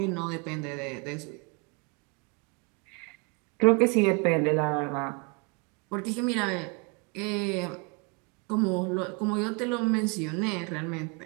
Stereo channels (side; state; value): left; quieter; 32.7 dB